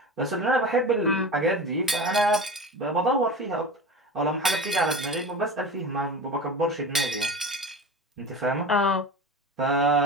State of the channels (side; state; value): both; normal; correlation 0.31